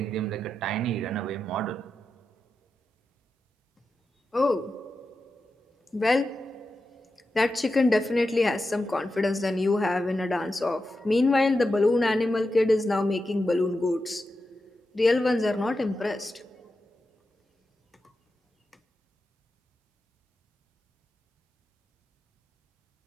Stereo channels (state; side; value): normal; both; correlation 0.90